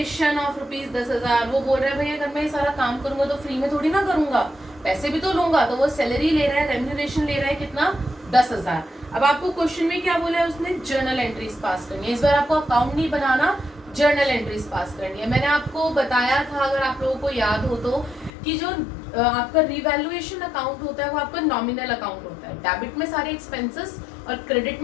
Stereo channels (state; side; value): drops out; right; at 18.3 s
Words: of ₹10,000। वो बोल रहा है भैया अगर मैं ये सारा काम करूंगा तो फ्री में थोड़ी ना करूंगा, पैसे भी तो लूंगा। तो वो सैलरी ले रहा है, रेम्यूनरेशन ले रहा है, कितना? 10,000। अब आपको क्वेश्चन में क्या बोला है उसने? जर्नल एंट्रीज पास करनी है। इस बार आपको अकाउंट नहीं बनाना, जर्नल एंट्रीज पास करनी है। मैंने आपको बताया था, अगर आप लोगों को याद हो तो, कि जो आपका रिवैल्यूएशन अकाउंट होता है वो आपका नॉमिनल अकाउंट होता है। डेबिट में सारे एक्सपेंसेस और क्रेडिट